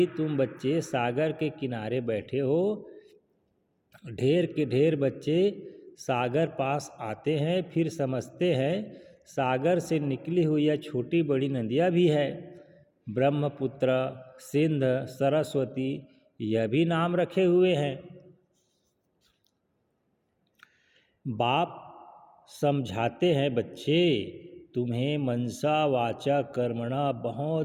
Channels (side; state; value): both; identical; correlation 1.00